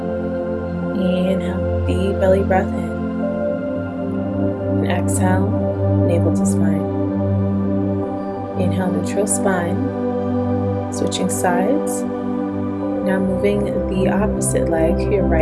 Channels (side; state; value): both; identical; correlation 1.00